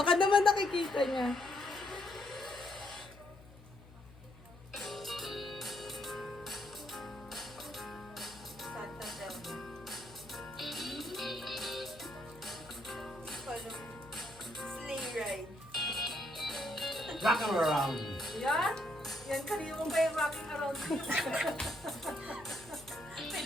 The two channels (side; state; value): left; noise; hum, 21 dB below the sound